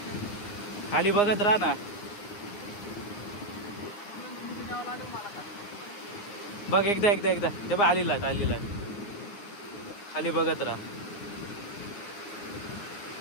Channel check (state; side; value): late; right; 9.7 ms